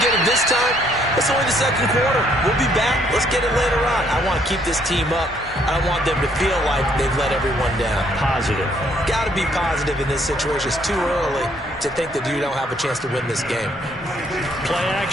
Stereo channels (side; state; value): both; normal; correlation 0.67